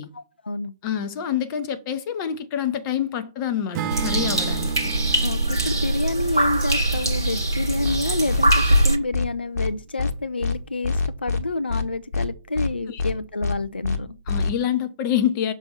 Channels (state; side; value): inverted; both; correlation -0.67